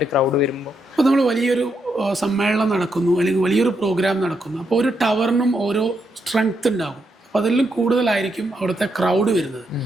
ക്രൗഡ് വരുമ്പോൾ? അപ്പോൾ നമ്മൾ വലിയൊരു സമ്മേളനം നടക്കുന്നു അല്ലെങ്കിൽ വലിയൊരു പ്രോഗ്രാം നടക്കുന്നു. അപ്പോൾ ഒരു ടവറിനും ഓരോ സ്ട്രെങ്ത് ഉണ്ടാകും. അപ്പോൾ അതിലും കൂടുതലായിരിക്കും അവിടുത്തെ ക്രൗഡ് വരുന്നത്.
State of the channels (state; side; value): normal; both; correlation 0.80